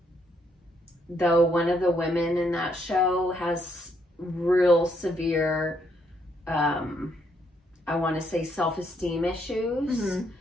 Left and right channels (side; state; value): both; normal; correlation 0.73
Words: Though one of the women in that show has real severe, I want to say, self-esteem issues.